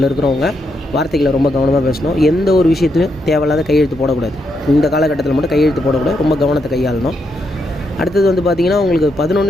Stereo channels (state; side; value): normal; both; correlation 0.80